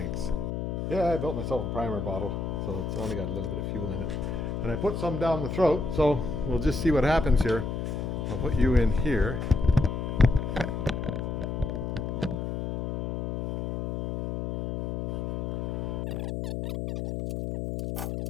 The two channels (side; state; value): left; noise; hum, 3 dB below the sound